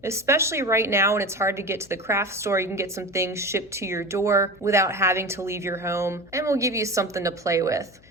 especially right now when it's hard to get to the craft store. You can get some things shipped to your door without having to leave your home, and we'll give you something to play with.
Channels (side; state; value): left; noise; hum, 27 dB below the sound